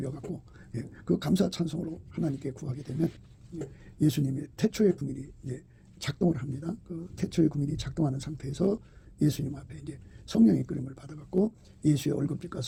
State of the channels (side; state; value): both; identical; correlation 1.00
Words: 그 감사 찬송으로 하나님께 구하게 되면 예수님의 태초의 궁일이 작동을 합니다. 그 태초의 궁일이 작동하는 상태에서 예수님 앞에 이제 성령의 이끌림을 받아갖고 예수의 얼굴빛과